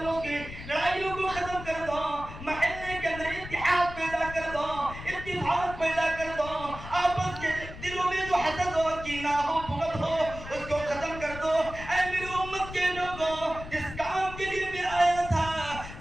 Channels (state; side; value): noise; left; rumble, 12 dB below the sound